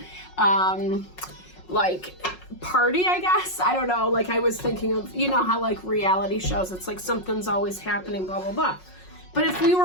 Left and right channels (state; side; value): late; right; 5.5 ms